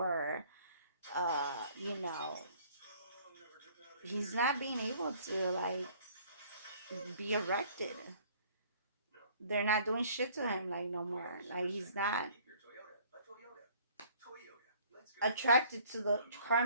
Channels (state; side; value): inverted; both; correlation -0.55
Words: he's not being able to like be erected. They're not doing shit to him like no more. Like, he's not attracted to the